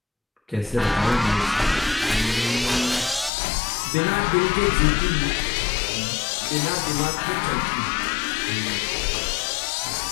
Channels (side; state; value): right; drops out; at 3.3 s